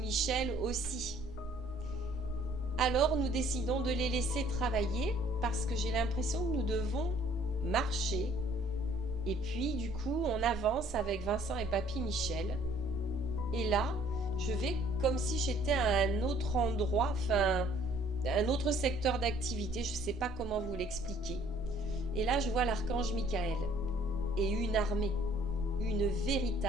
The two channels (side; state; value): both; normal; correlation 0.59